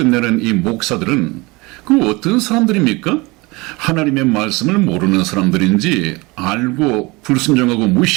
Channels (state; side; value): quieter; left; 24.3 dB